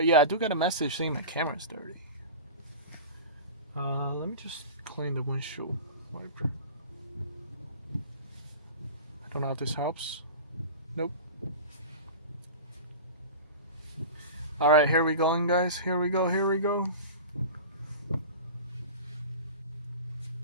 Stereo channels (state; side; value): inverted; both; correlation -0.32